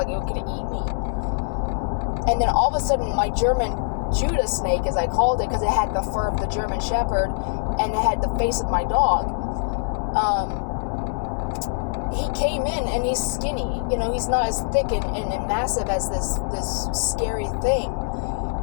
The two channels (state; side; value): silent; right; digital silence